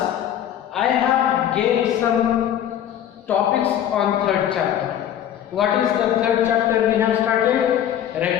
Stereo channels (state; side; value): quieter; right; 10.5 dB